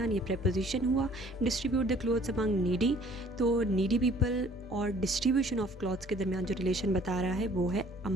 ये preposition हुआ। Distribute the clothes among needy, तो नीडी पीपल और डिस्ट्रीब्यूशन ऑफ क्लॉथ्स के दरमियान जो रिलेशन बता रहा है वो है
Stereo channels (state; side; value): normal; both; correlation 0.56